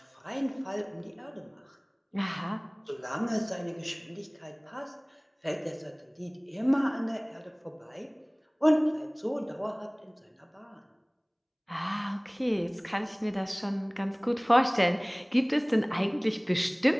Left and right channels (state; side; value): identical; both; correlation 1.00